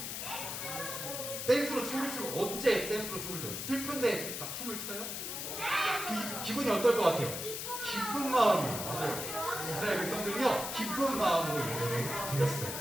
댄스로 춤을 추고. 언제 댄스로 춤을 춰요? 슬픈데 막 춤을 춰요? 기분이 어떨 것 같아요? 기쁜 마음이에요. 맞아요. 이스라엘 백성들은요, 기쁜 마음으로 예배를 드렸어요.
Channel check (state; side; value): noise; left; hiss, 5 dB below the sound